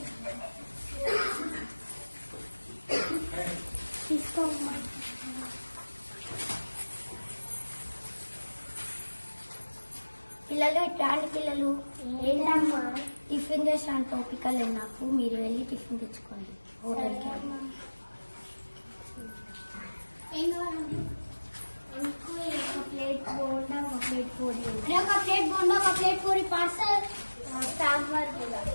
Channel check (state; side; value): inverted; both; correlation -1.00